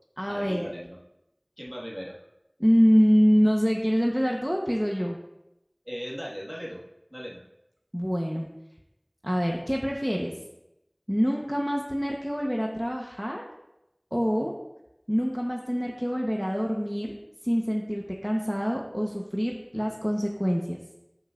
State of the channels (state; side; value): identical; both; correlation 1.00